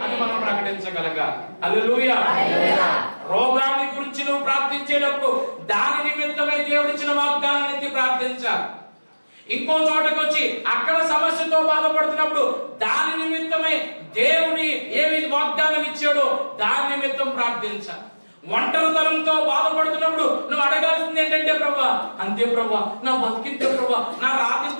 అని మనం ప్రకటించగలగాలి. హల్లెలూయా. రోగాన్ని గురించి నువ్వు ప్రార్థించేటప్పుడు దాని నిమిత్తమై దేవుడిచ్చిన వాగ్దానాన్ని ఎత్తి ప్రార్థించాలి. ఇంకో చోటకు వచ్చి అక్కడ సమస్యతో బాధపడుతున్నప్పుడు దాని నిమిత్తమై దేవుని ఏమి వాగ్దానం ఇచ్చాడో దాని నిమిత్తం ప్రార్థించాలి. ఒంటరితనంతో బాధపడుతున్నప్పుడు నువ్వు అడగాల్సింది ఏంటంటే, ప్రభా అంతే ప్రభా, నా బతికింతే ప్రభా, నా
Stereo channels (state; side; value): inverted; both; correlation -1.00